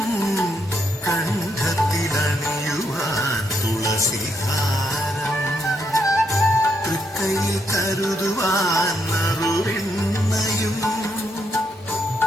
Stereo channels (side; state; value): both; normal; correlation 0.77